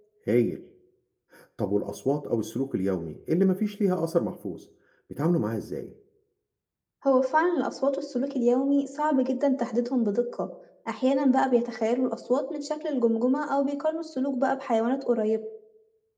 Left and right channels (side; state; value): both; identical; correlation 1.00